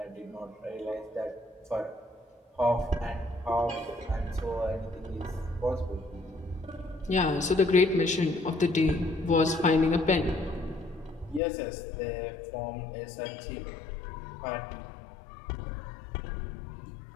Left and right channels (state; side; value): drops out; right; at 11.4 s